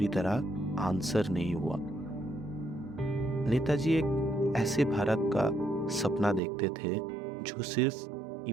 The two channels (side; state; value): left; drops out; at 6.4 s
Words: तरह आंसर नहीं हुआ। नेताजी एक ऐसे भारत का सपना देखते थे जो सिर्फ